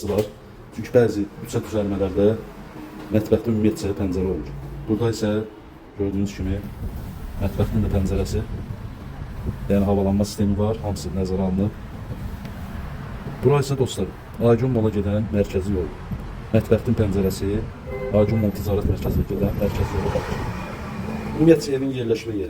var. Çünki bəzi yüksək düzəlmələrdə mətbəxdə ümumiyyətcə pəncərə olur. Burada isə gördüyünüz kimi mətbəxtin də pəncərəsi, yəni havalanma sistemi var. Hamısı nəzərə alınıb. Bura isə dostlar, Aygün Mola gedən mərkəzi yol. Mətbəxtin pəncərəsi Aygün Mol Ticarət Mərkəzinə gedən mərkəzi yola baxır. Ümumiyyətcə evin yerləşmə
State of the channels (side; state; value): both; identical; correlation 1.00